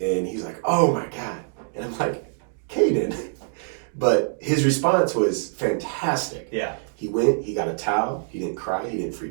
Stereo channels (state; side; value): silent; left; digital silence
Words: he's like, oh my God. And I'm like, Caden. But his response was fantastic. Yeah. He went, he got a towel. He didn't cry. He didn't